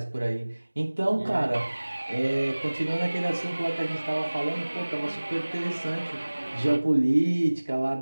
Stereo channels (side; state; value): both; inverted; correlation -1.00